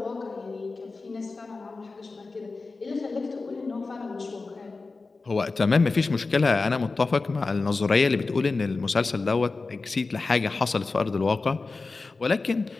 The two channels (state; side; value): quieter; right; 3.9 dB